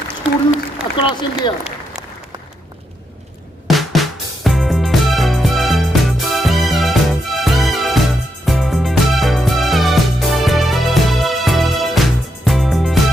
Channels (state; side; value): normal; both; correlation 0.81